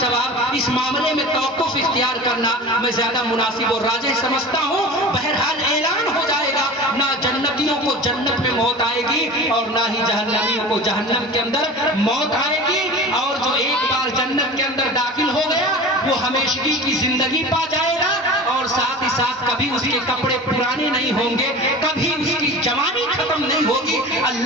اس معاملے میں توقف اختیار کرنا میں زیادہ مناسب اور راجح سمجھتا ہوں۔ بہرحال اعلان ہو جائے گا، نہ جنتیوں کو جنت میں موت آئے گی اور نہ ہی جہنمیوں کو جہنم کے اندر موت آئے گی، اور جو ایک بار جنت کے اندر داخل ہو گیا وہ ہمیشگی کی زندگی پا جائے گا، اور ساتھ ہی ساتھ کبھی اس کے کپڑے پرانے نہیں ہوں گے، کبھی اس کی جوانی ختم نہیں ہوگی۔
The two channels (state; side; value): normal; both; correlation 0.35